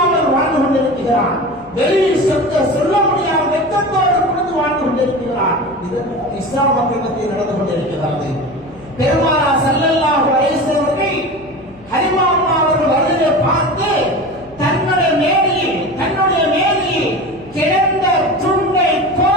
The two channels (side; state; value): left; noise; hum, 25 dB below the sound